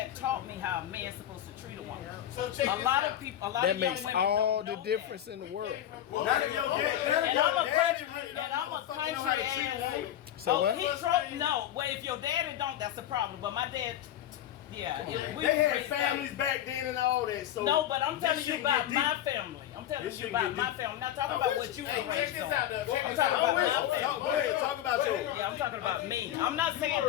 taught me how a man's supposed to treat a woman. So check A this lot out. of people, a lot That of young makes women all don't the know difference in the world. Not if your dad, And I'm a country, really and I'm a fucking know how country to treat a ass. woman. So what? He no. Well, if your daddy don't, that's a problem. But my dad, yeah, we They had raised families back then and all that. So No, but I'm this telling you shit about get my deep. family. I'm telling This you shit about get my deep. family. I'm not talking about what you were Hey, check raised this on. out, though. Check I'm this talking out. about I'm with my you. family. Go ahead, talk about yours. Yeah, I'm talking about me. I'm not saying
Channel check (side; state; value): right; quieter; 11.8 dB